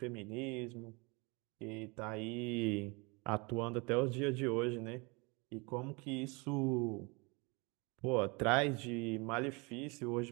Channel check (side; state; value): left; quieter; 28.6 dB